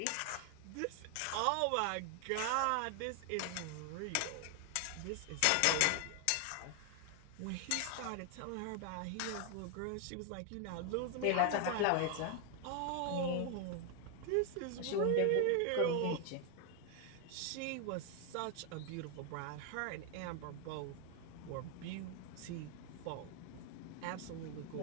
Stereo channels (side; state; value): both; different; correlation 0.00